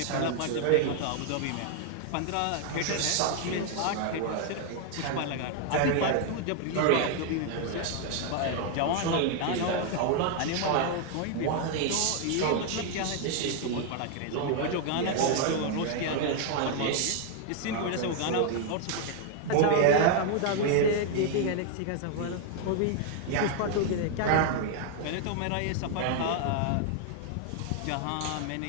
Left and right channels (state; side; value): different; both; correlation 0.00